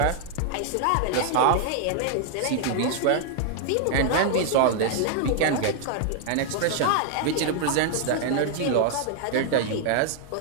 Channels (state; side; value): different; both; correlation 0.00